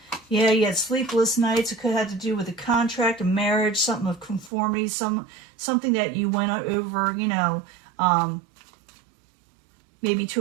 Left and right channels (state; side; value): drops out; left; at 4.5 s